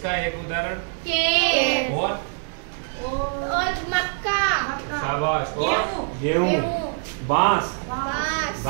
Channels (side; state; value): left; silent; 58 dB below the other